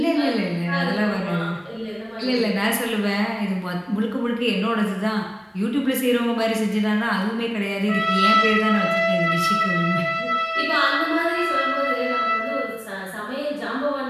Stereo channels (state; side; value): identical; both; correlation 1.00